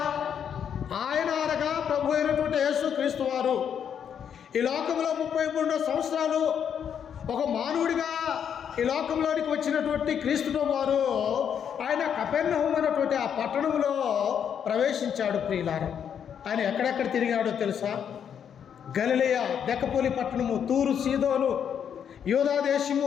ఆయన అనగా ప్రభు అయినటువంటి యేసుక్రీస్తు వారు ఈ లోకంలో 33 సంవత్సరాలు ఒక మానవుడిగా ఈ లోకంలోనికి వచ్చినటువంటి క్రీస్తు వారు ఆయన కపెర్నహూము అనేటువంటి ఆ పట్టణంలో ప్రవేశించాడు ప్రియులారా. ఆయన ఎక్కడెక్కడ తిరిగాడో తెలుసా? గలిలయ, దెకపోలి పట్టణము, తూరు, సీదోను, యూదా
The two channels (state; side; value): quieter; right; 8.2 dB